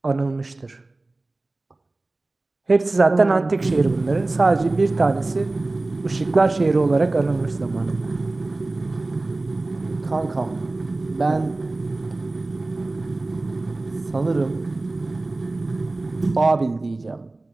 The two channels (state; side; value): quieter; left; 3.1 dB